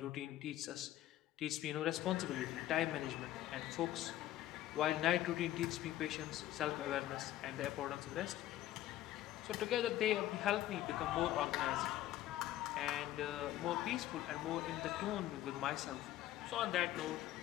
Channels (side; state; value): right; quieter; 13.9 dB